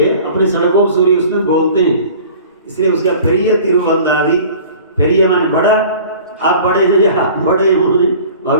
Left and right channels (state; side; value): inverted; both; correlation -0.45